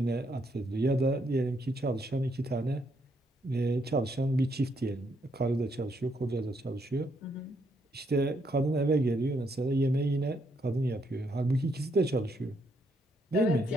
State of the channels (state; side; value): normal; both; correlation 0.74